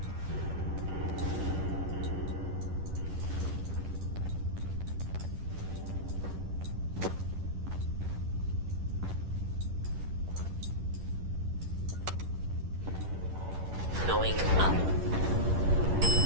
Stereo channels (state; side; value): late; left; 11 ms